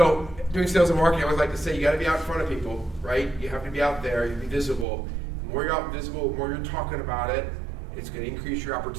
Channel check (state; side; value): drops out; left; at 4.9 s